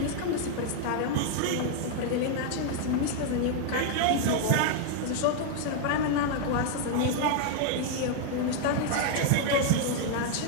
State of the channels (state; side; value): different; both; correlation 0.00